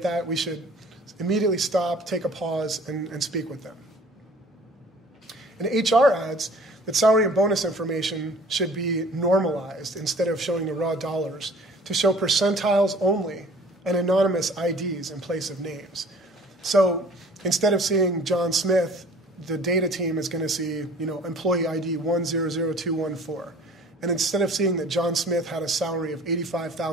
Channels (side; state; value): both; normal; correlation 0.49